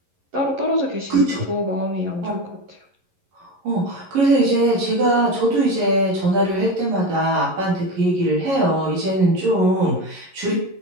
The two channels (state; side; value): late; left; 11 ms